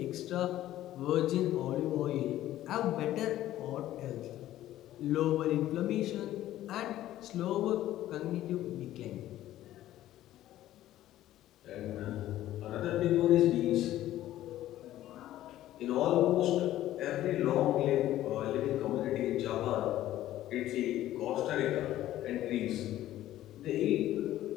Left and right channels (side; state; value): right; quieter; 13.8 dB